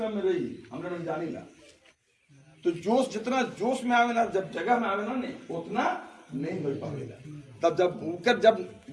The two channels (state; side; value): identical; both; correlation 1.00